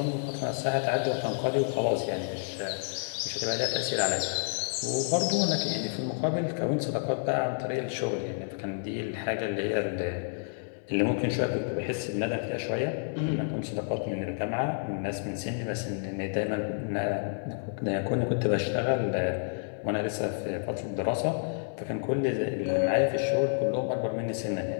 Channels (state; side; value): silent; right; 58 dB below the other